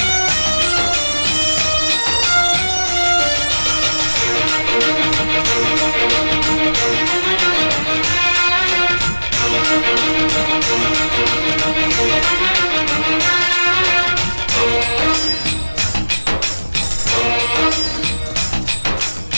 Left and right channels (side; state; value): both; inverted; correlation -1.00